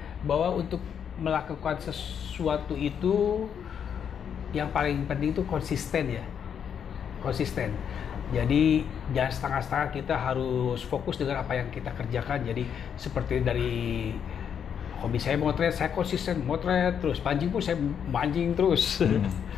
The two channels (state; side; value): quieter; right; 8.0 dB